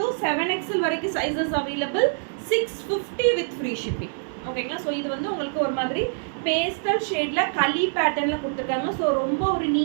7XL வரைக்கும் sizes available. 650 with free shipping, ஓகேங்களா. ஸோ இது வந்து உங்களுக்கு ஒரு மாதிரி பேஸ்டல் ஷேடில் களி பேட்டர்னில் கொடுத்துருக்காங்க. ஸோ ரொம்ப ஒரு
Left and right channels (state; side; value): silent; left; 62 dB below the other